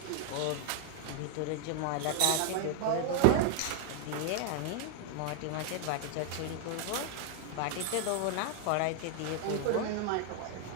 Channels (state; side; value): different; both; correlation 0.00